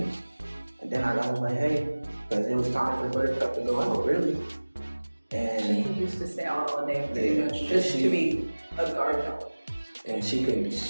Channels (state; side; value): inverted; both; correlation -1.00